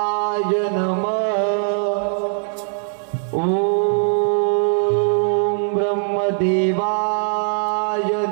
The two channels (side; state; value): left; silent; digital silence